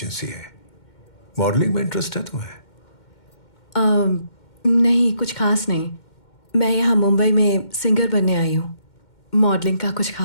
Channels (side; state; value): right; late; 2.1 ms